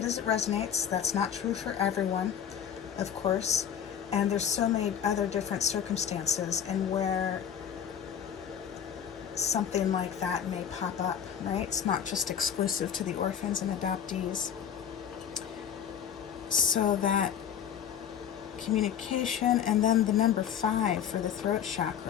as it resonates. That's not true for everyone, of course. And there's so many other different circumstances and where something like that may pop up, right? It's not just exclusive to the orphans and adoptees. So that communication, and then the number 5 for the throat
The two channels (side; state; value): right; quieter; 8.7 dB